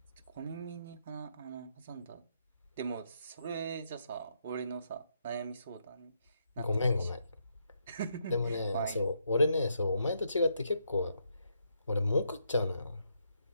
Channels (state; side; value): inverted; both; correlation -0.76